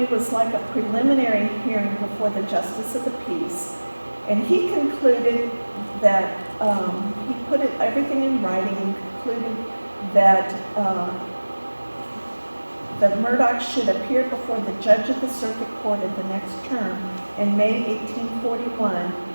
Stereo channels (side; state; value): both; inverted; correlation -1.00